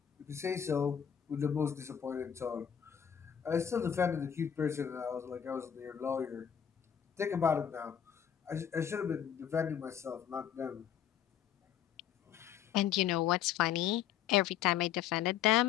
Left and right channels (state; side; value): quieter; right; 9.1 dB